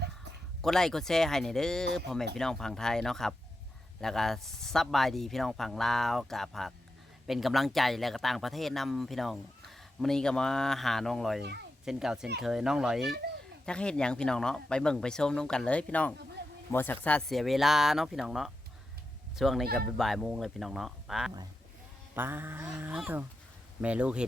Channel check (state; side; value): normal; both; correlation 0.89